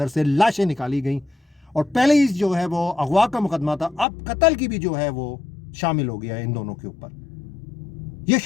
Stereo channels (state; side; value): drops out; right; at 4.0 s